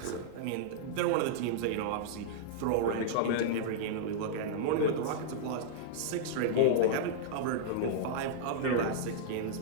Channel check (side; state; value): both; different; correlation -0.02